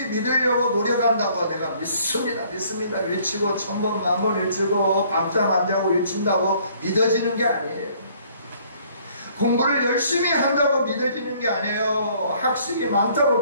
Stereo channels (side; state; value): both; inverted; correlation -0.60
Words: 믿으려고 노력한다고 내가 믿습니다, 믿습니다 외치고 1000번, 10,000번 외치고 밤잠 안 자고 외친다고 믿어지는 게 아니에요. 공부를 열심히 한다고 믿어지는 게 아니에요. 학식이 많다고